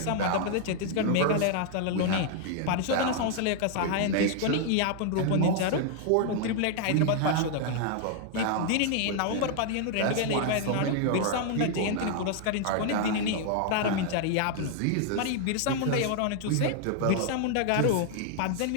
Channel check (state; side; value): different; both; correlation 0.00